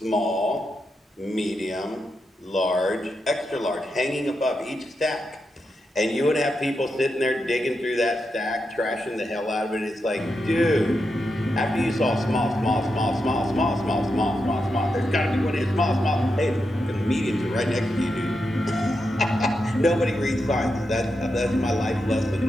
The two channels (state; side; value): normal; both; correlation 0.86